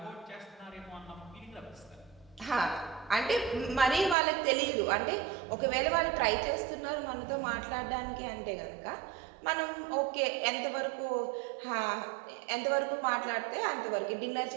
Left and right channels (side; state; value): left; drops out; at 4.2 s